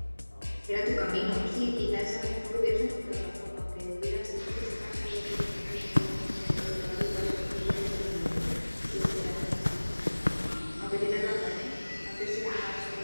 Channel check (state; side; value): inverted; both; correlation -1.00